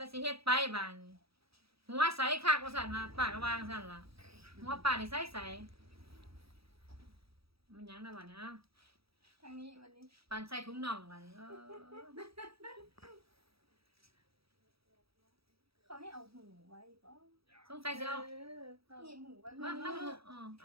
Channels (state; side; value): late; left; 0.77 ms